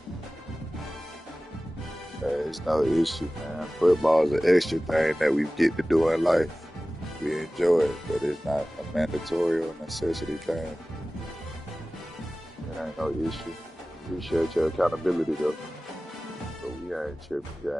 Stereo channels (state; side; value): normal; both; correlation 0.97